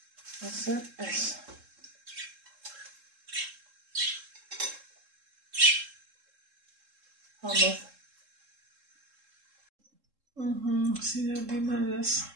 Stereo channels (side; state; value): left; late; 3.7 ms